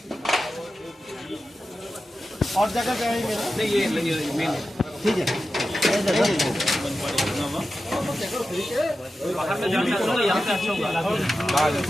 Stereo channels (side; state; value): both; normal; correlation 0.92